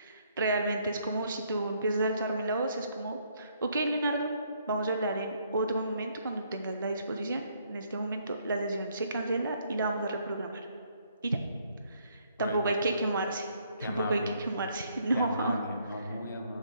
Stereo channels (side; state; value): both; inverted; correlation -0.69